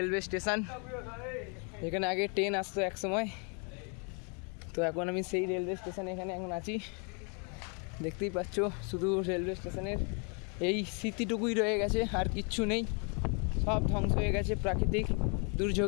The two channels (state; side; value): quieter; right; 36.7 dB